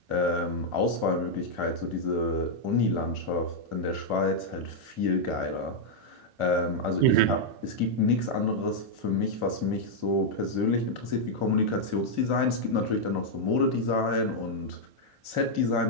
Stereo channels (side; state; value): left; late; 2.5 ms